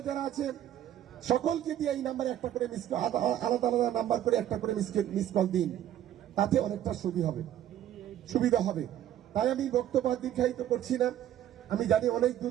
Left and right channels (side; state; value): left; quieter; 11.6 dB